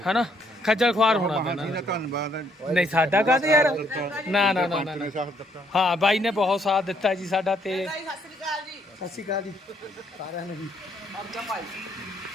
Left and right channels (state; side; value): normal; both; correlation 0.69